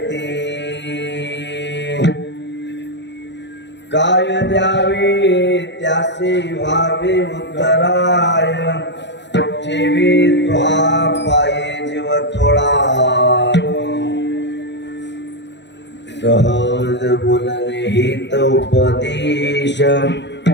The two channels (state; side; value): late; right; 0.51 ms